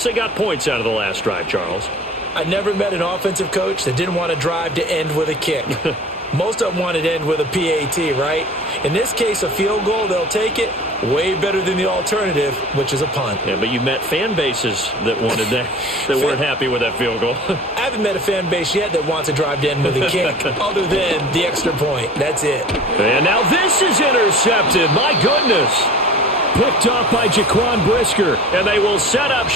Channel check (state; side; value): normal; both; correlation 0.42